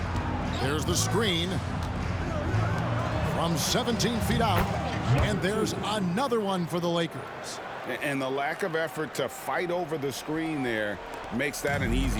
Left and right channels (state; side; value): identical; both; correlation 1.00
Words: There's the screen. From 17 feet out. And there's another one for the Lakers. And the lack of effort to fight over the screen there makes that an